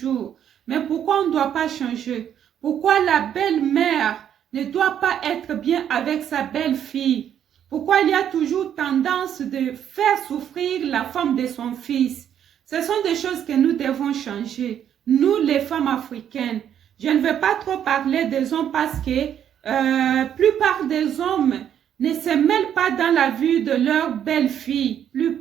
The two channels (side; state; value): left; quieter; 9.5 dB